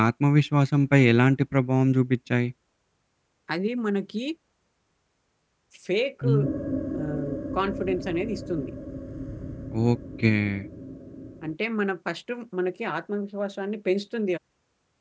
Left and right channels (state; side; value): identical; both; correlation 1.00